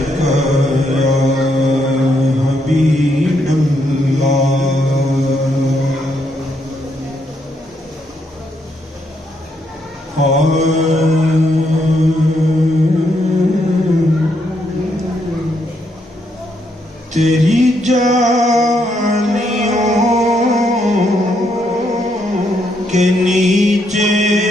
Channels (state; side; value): normal; both; correlation 0.76